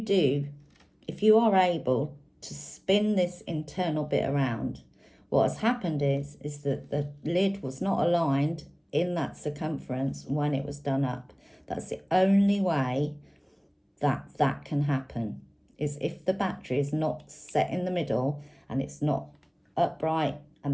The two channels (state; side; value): identical; both; correlation 1.00